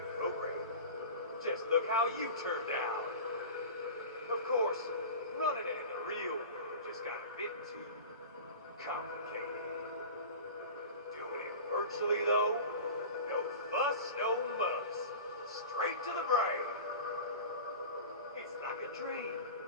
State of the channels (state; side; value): inverted; both; correlation -0.33